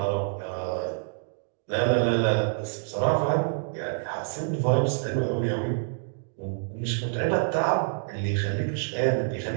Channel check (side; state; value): left; silent; digital silence